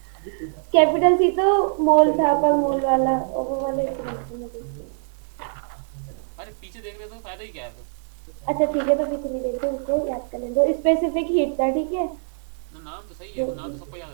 कैपिटल सी तो मॉल था, मॉल वाला वो वाले। अरे पीछे देखने तो फायदा ही क्या है फिर? अच्छा ठीक है, मतलब मुझे तो याद करें, तो स्पेसिफिक हीट था, ठीक है। ना नाम तो सही है, वो नाम तो सबको याद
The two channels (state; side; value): silent; left; digital silence